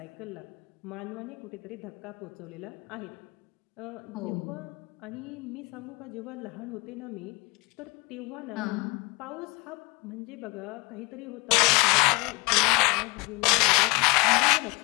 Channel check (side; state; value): right; quieter; 26.2 dB